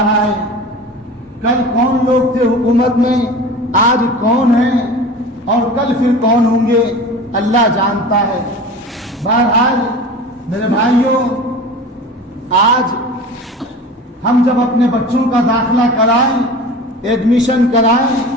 ہے. کل کون لوگ تھے حکومت میں، آج کون ہیں، اور کل پھر کون ہوں گے، اللہ جانتا ہے. بہرحال میرے بھائیوں، آج ہم جب اپنے بچوں کا داخلہ کرائیں، ایڈمیشن کرائیں،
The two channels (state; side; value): normal; both; correlation 0.36